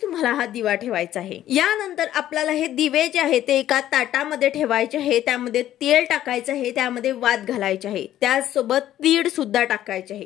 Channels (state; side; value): quieter; right; 12.5 dB